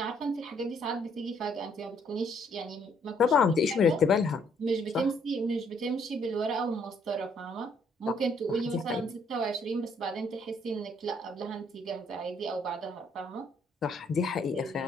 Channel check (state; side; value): normal; both; correlation 0.67